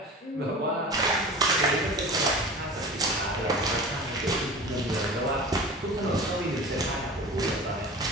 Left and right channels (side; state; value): both; normal; correlation 0.36